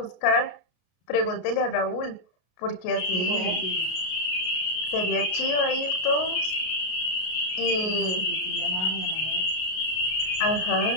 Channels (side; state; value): right; late; 32 ms